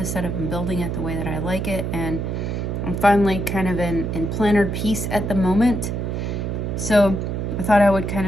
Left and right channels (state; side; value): noise; right; hum, 2 dB below the sound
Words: setup and building it the way that I like it, and I'm finally kind of in planner peace at the moment. So I thought I would kind